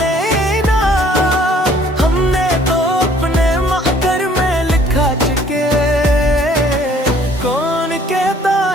हमने तो अपने महकर में लिखा चुके। कौन कहता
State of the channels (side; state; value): both; normal; correlation 0.58